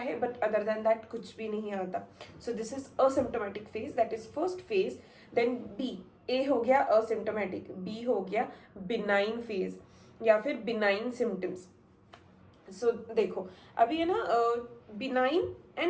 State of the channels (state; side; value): identical; both; correlation 1.00